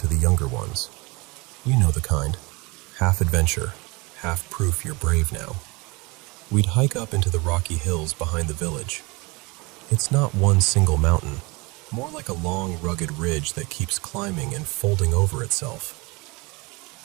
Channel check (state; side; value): quieter; left; 26.0 dB